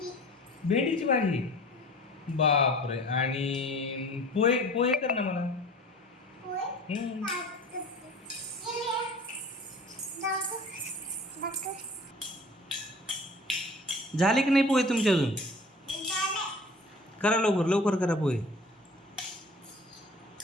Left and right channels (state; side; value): normal; both; correlation 0.44